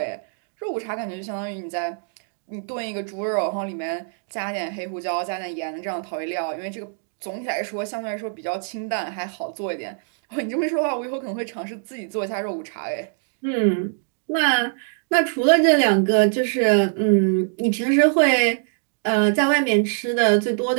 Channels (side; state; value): left; silent; digital silence